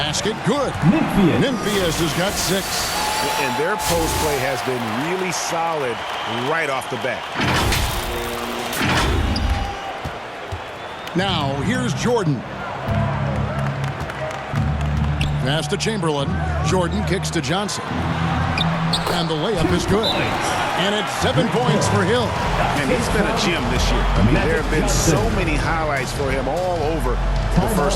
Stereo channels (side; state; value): both; identical; correlation 1.00